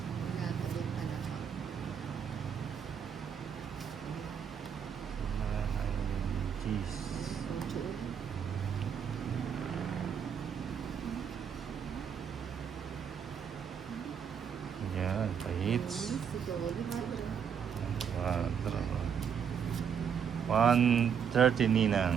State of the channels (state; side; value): quieter; left; 7.6 dB